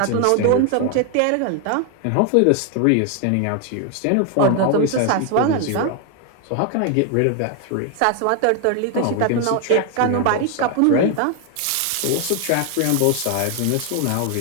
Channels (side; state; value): both; different; correlation 0.01